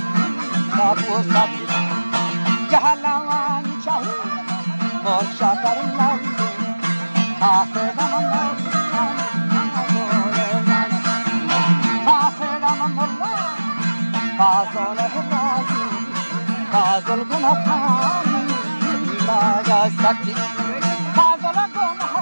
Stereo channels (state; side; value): inverted; both; correlation -1.00